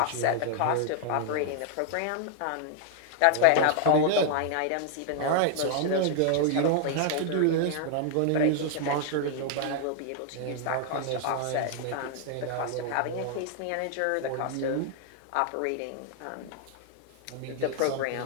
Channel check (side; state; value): both; different; correlation 0.00